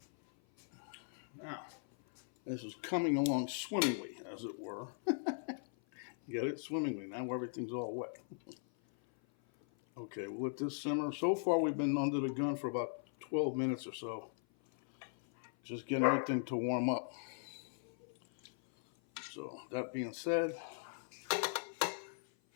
Now, this is coming along swimmingly, as it were. Get it? Swimmingly. Now everything's all wet. Okay, we'll let this simmer. So far, we've been under the gun for about 12 minutes or so. Just getting everything to warm up. So, that being said, I'm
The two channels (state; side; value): silent; right; 52 dB below the other